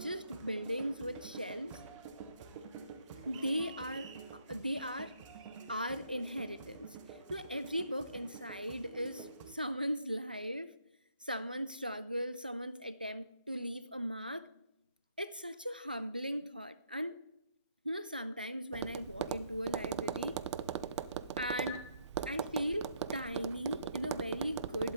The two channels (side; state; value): both; inverted; correlation -0.71